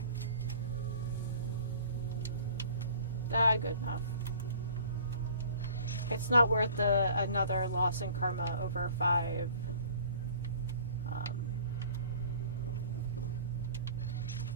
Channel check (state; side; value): inverted; both; correlation -0.48